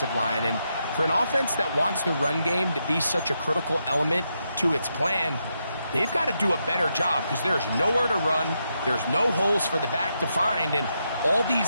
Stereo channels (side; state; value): both; inverted; correlation -0.83